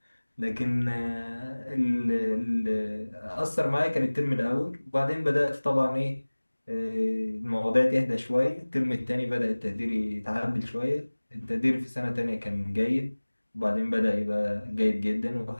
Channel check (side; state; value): both; inverted; correlation -1.00